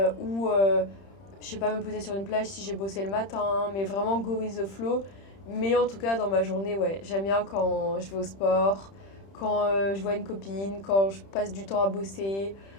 Ou, je sais pas, me poser sur une plage si j'ai bossé le matin. Mais vraiment go with the flow. Mais en tout cas, dans ma journée, ouais, j'aime bien quand je vais au sport, quand je vois une copine, quand je passe du temps à bosser,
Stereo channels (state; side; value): late; right; 31 ms